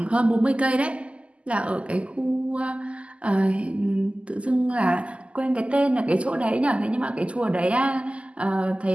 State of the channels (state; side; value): late; left; 0.058 ms